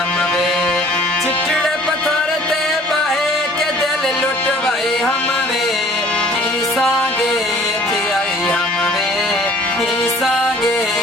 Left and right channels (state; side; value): normal; both; correlation 0.52